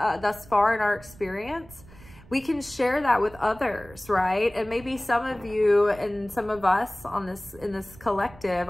far in our experience. We can share that with others, right? And maybe some of you and some of us in this collective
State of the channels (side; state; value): right; noise; rumble, 21 dB below the sound